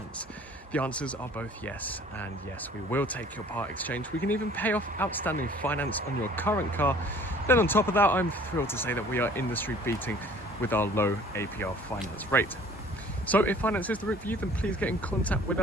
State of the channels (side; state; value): both; normal; correlation 0.52